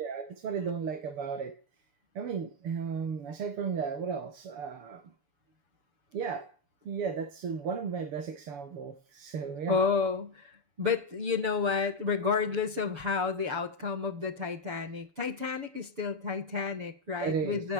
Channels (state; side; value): late; left; 6.9 ms